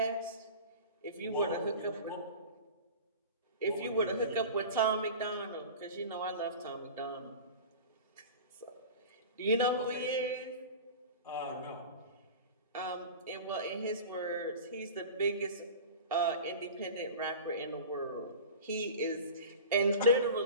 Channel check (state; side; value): inverted; both; correlation -0.34